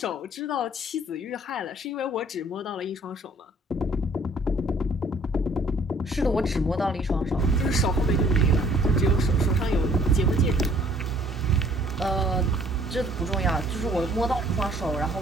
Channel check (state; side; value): normal; both; correlation 0.57